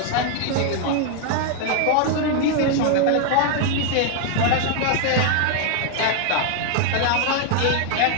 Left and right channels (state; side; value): different; both; correlation 0.00